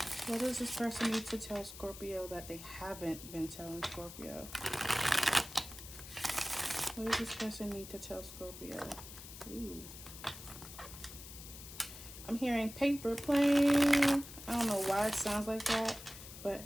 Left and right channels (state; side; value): noise; left; hiss, 13 dB below the sound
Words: What does this person need to tell Scorpio that they haven't been telling Scorpio? What does this person need to tell Scorpio? Ooh. I'm hearing paper plane. I don't know why it sounds like that,